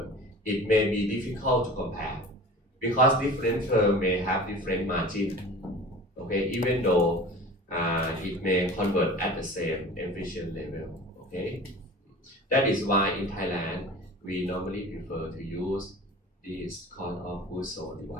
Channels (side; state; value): both; normal; correlation 0.39